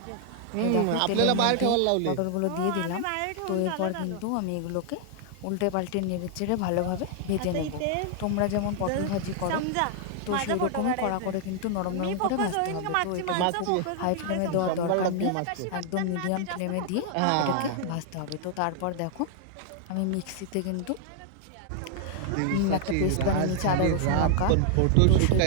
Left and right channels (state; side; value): different; both; correlation 0.00